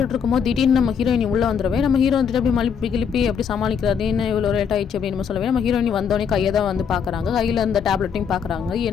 இருக்கும்போது திடீர்னு நம்ம ஹீரோயினி உள்ளே வந்துடுவே. நம்ம ஹீரோ வந்துட்டு அப்படி மலிப்பி கிளிப்பி அப்படி சமாளிக்கிறாரு. என்ன இவ்வளோ லேட் ஆயிடுச்சு அப்படின்னு நம்ம சொல்லவே நம்ம ஹீரோயினி வந்தோடனே கையை தான் வந்து பார்க்குறாங்க. கையில் இந்த டேப்லெட்டையும் பார்க்குறாங்க.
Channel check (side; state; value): right; quieter; 7.1 dB